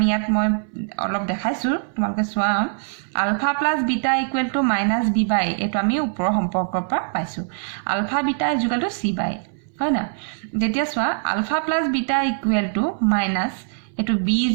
ইয়াত মই অলপ দেখাইছোঁ, তোমালোকে চোৱা। Alpha plus beta equal to minus B by, এইটো আমি ওপৰৰ সম্পৰ্কৰ পৰা পাইছোঁ। Alpha beta is equal to C by, হয় না? যেতিয়া চোৱা alpha plus beta equal to minus, এইটো বি ইজ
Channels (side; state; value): left; silent; 61 dB below the other